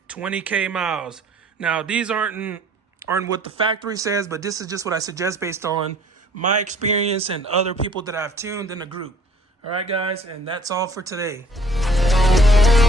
20K miles. Now, these aren't what the factory says, but this is just what I suggest based on my experience and other people that I've tuned in the group. All right, guys, and that's all for today.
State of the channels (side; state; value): both; normal; correlation 0.55